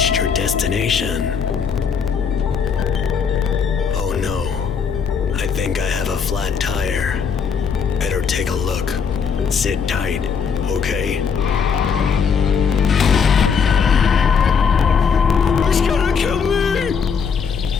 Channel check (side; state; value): right; quieter; 6.3 dB